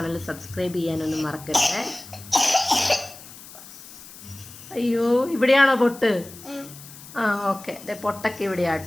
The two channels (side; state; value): left; noise; hiss, 17 dB below the sound